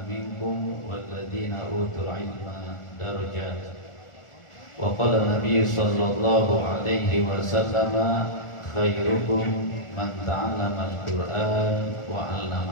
minkum walladhina utul ilma darajat. Wa qala Nabi sallallahu alaihi wasallam, khairukum man ta'allama al-Qur'an wa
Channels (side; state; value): right; late; 1.4 ms